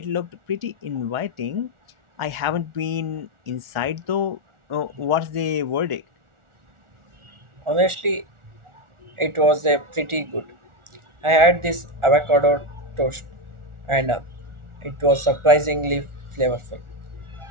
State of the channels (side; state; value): left; late; 1.4 ms